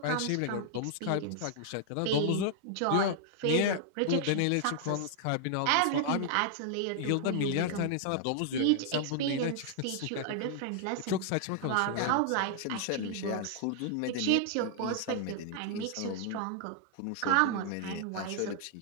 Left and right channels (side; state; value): both; different; correlation -0.01